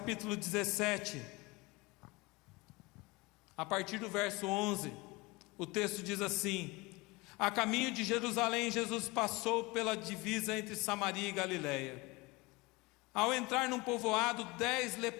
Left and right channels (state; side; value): quieter; right; 24.0 dB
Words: 17, a partir do verso 11, o texto diz assim: a caminho de Jerusalém, Jesus passou pela divisa entre Samaria e Galiléia. Ao entrar num povoado, 10